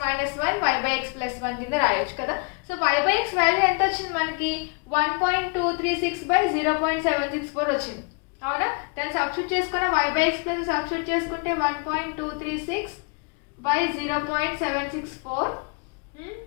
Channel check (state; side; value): quieter; right; 34.6 dB